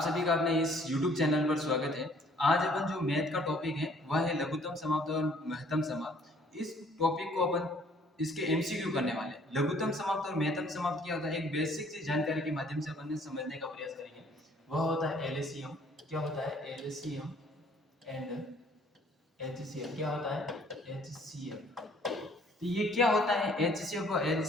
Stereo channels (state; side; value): normal; both; correlation 0.59